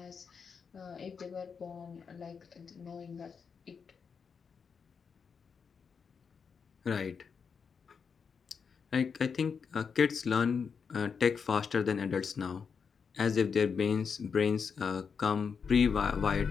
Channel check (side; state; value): right; quieter; 6.0 dB